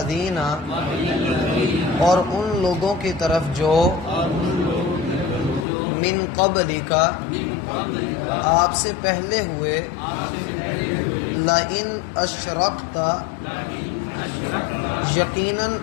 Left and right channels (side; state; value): right; drops out; at 5.7 s